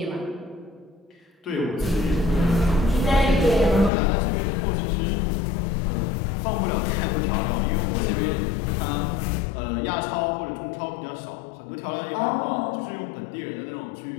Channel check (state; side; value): drops out; right; at 3.9 s